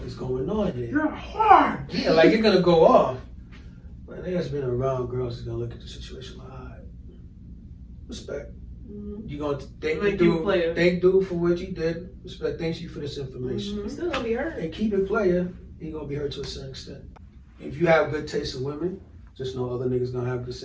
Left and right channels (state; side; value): identical; both; correlation 1.00